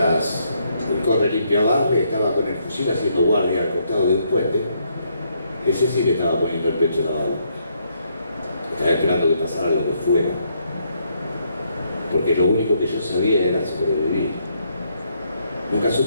el corre limpia barre estaba con el fusil haciendo guardia al costado de un puente, ese sí que estaba poniendo el pecho en la bala. Estaba esperando que pasara lo que fuera. Porque lo único que yo sabía era sobrevivir. Nunca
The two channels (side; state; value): both; inverted; correlation -0.74